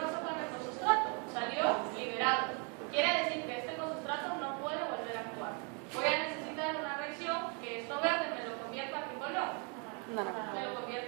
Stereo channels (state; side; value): quieter; left; 36.1 dB